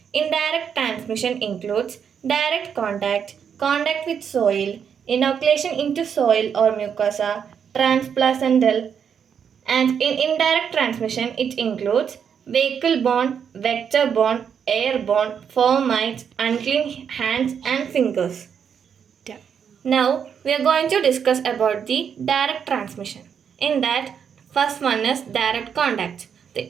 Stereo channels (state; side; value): quieter; left; 7.5 dB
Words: Indirect transmission includes direct contact, contact with soil, inoculation into soil or mucosa, transplacental, and in indirect transmission it includes vehicle-borne, vector-borne, airborne, fomites, unclean hands and fingers. Now we are going to discuss about the direct transmission. In that, first one is direct contact.